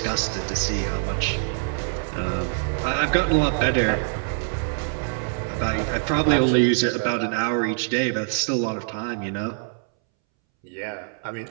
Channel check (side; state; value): left; silent; 62 dB below the other